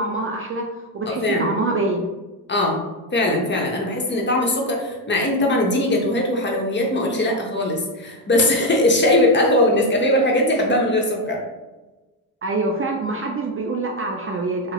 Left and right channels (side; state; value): both; normal; correlation 0.07